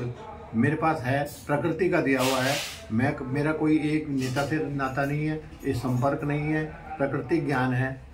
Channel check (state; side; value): identical; both; correlation 1.00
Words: मेरे पास है, प्रकृति का दिया हुआ है। मेरा कोई एक नेता से नाता नहीं है, ये संपर्क नहीं है, प्रकृति ज्ञान है